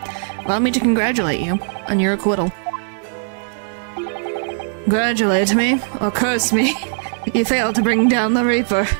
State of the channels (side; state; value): left; silent; digital silence